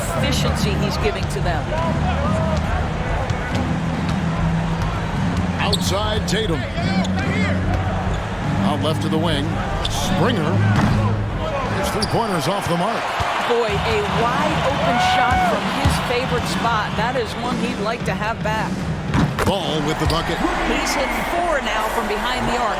he's giving to them. Outside Tatum. Out left to the wing. Springer. His 3-pointers off the mark. Boy, a wide open shot from his favorite spot. That is one he'd like to have back. Ball with the bucket. He's hit 4 now from behind the arc.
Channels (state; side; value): identical; both; correlation 1.00